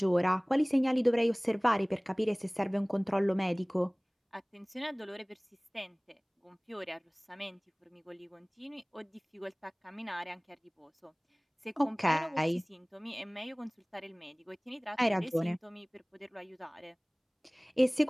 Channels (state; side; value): identical; both; correlation 1.00